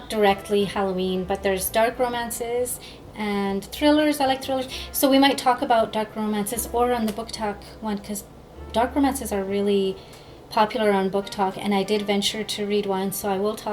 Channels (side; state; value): both; identical; correlation 1.00